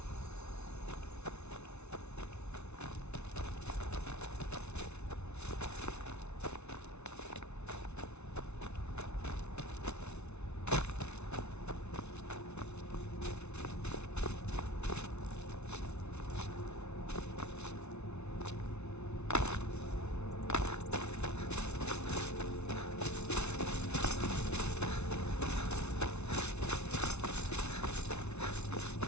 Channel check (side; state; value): right; late; 0.81 ms